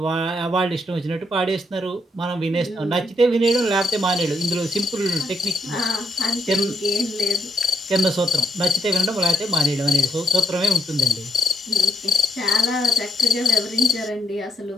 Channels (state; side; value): normal; both; correlation 0.74